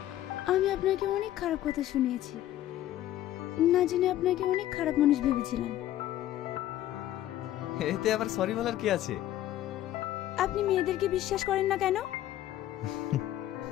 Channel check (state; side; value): quieter; right; 13.3 dB